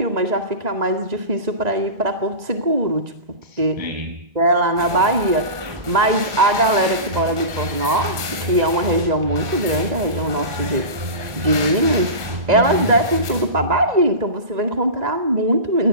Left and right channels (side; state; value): left; late; 1.3 ms